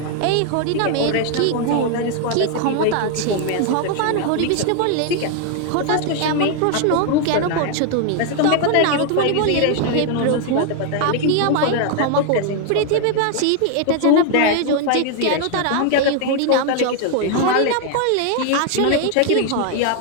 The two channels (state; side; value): different; both; correlation 0.00